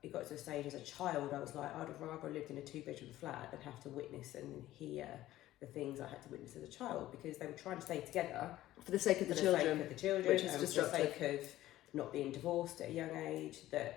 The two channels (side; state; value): right; quieter; 14.9 dB